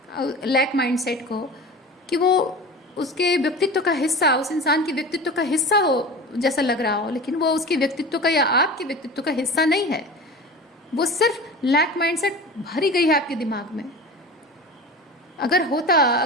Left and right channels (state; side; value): normal; both; correlation 0.34